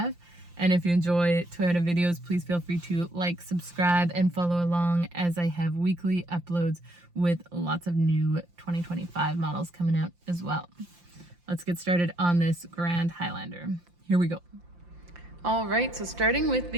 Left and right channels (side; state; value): left; late; 5.7 ms